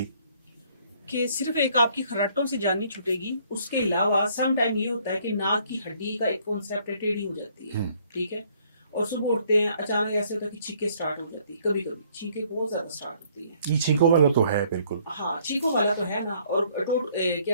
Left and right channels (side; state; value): both; inverted; correlation -0.63